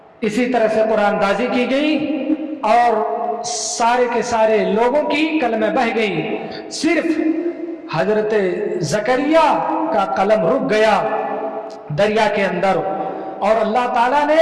اسی طرح سے قرآن دازی کی گئی اور سارے کے سارے لوگوں کی قلمیں بہ گئی، صرف حضرت زکریا کا قلم رک گیا دریا کے اندر، اور اللہ تعالیٰ نے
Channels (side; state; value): both; identical; correlation 1.00